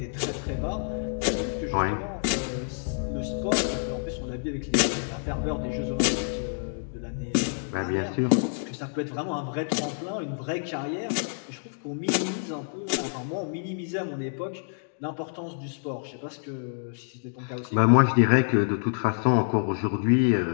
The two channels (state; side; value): silent; right; digital silence